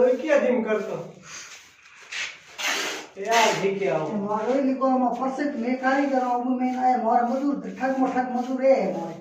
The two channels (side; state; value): both; identical; correlation 1.00